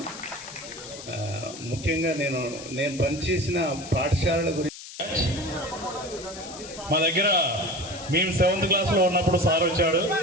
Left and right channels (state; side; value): noise; left; hiss, 14 dB below the sound